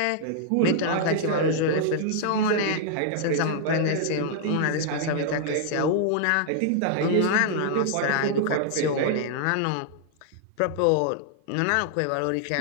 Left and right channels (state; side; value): different; both; correlation -0.01